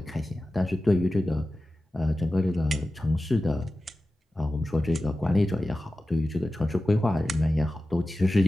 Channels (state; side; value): normal; both; correlation 0.94